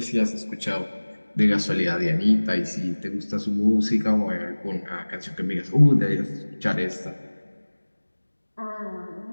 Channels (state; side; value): inverted; both; correlation -1.00